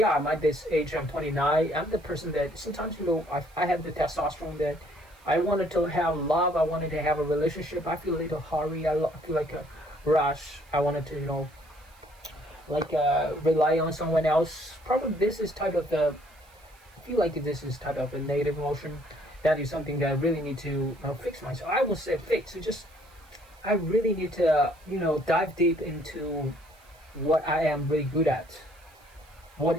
at this age, I'm 29. I'm the person that sometimes, I have the testosterone that I wanted to have love. I wanted to have a relationship. I feel a little hurry. I feel like a rush. I wanted to, rely on someone else. Probably this is type of I feel like this is type of a negative emotion. That is something that I really need to fix myself. I won't say fix. I really need to, dive deep into what I am really good at. What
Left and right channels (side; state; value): right; noise; hiss, 29 dB below the sound